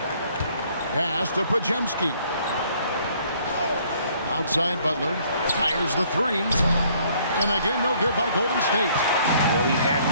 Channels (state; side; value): inverted; both; correlation -0.62